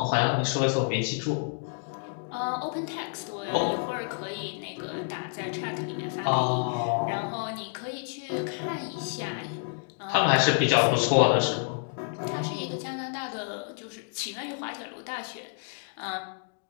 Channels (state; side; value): silent; right; 56 dB below the other